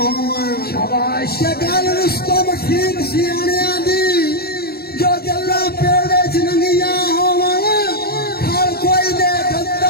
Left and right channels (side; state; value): right; late; 0.45 ms